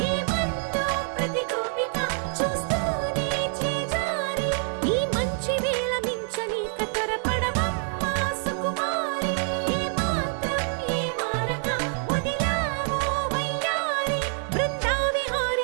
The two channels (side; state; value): left; silent; 61 dB below the other